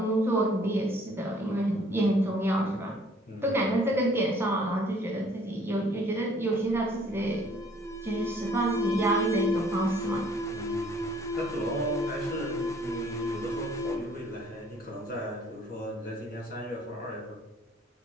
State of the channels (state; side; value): normal; both; correlation 0.59